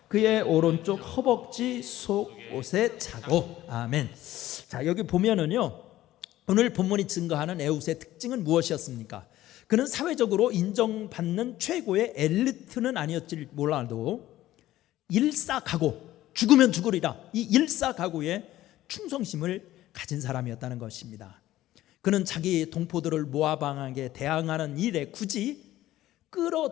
그의 오른쪽 허벅지 속옷에 차고. 아멘. 자, 여기 보면은요, 오늘 본문이 증거하는 에훗의 특징은 무엇이었습니까? 그는 사회적으로 인정받는 최고의 엘리트는 아니었지 몰라도 일사각오, 죽으면 죽으리라, 이 일사각오의 충성심을 가진 사람이었다는 것입니다. 그는 자기 동포들을 모압 왕에게 대항하는 일에 굳이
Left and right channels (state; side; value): quieter; right; 14.8 dB